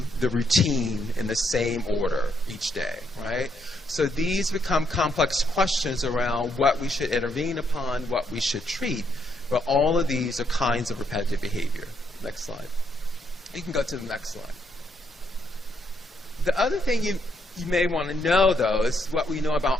the routine in the same order each day, right? So these become complex questions around what we should intervene upon, what we should treat, but all of these are kinds of repetitive behavior. Next slide. You can go to the next slide. The other thing you may want to know, though, is what we know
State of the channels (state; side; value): normal; both; correlation 0.75